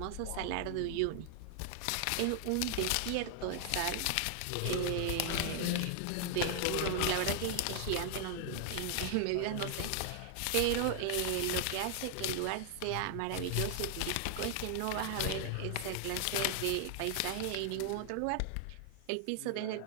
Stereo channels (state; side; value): different; both; correlation 0.00